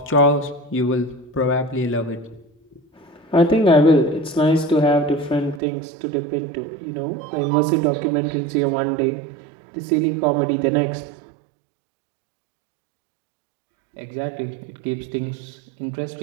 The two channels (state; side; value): drops out; left; at 5.6 s